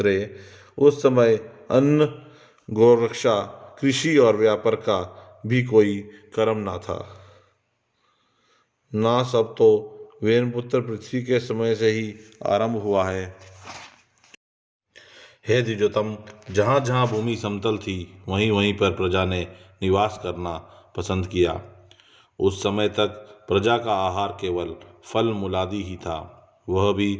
उस समय अन्न, गौरक्षा, कृषि और व्यापार का भी कोई कर्म न था। ना सब तो वेनपुत्र पृथ्वी के समय से ही आरंभ हुआ है। हे द्विजोतम, जहाँ जहाँ भूमि समतल थी वहीं वहीं पर प्रजा ने निवास करना पसंद किया। उस समय तक प्रजा का आहार केवल फल मूलादि ही था, वह भी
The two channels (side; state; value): both; identical; correlation 1.00